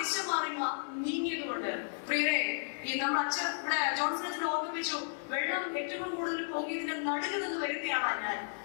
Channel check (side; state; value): right; silent; digital silence